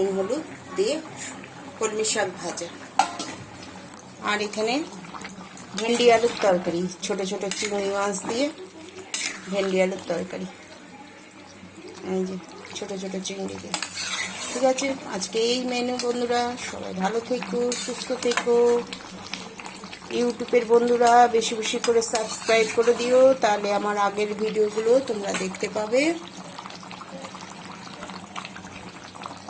হলুদ দিয়ে কলমি শাক ভাজা। আর এখানে ভেন্ডি আলুর তরকারি, ছোট ছোট চিংড়ি মাছ দিয়ে ভেন্ডি আলুর তরকারি। এই যে ছোট ছোট চিংড়ি দিয়ে। ঠিক আছে, আজকে এই মেনু বন্ধুরা। সবাই ভালো থেকো, সুস্থ থেকো। ইউটিউবের বন্ধুরা বেশি বেশি করে সাবস্ক্রাইব করে দিও, তাহলে আমার আগের ভিডিওগুলো তোমরা দেখতে পাবে।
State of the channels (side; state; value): both; identical; correlation 1.00